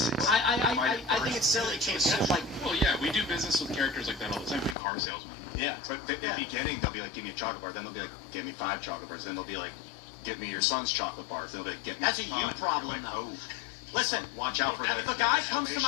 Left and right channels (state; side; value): drops out; right; at 4.8 s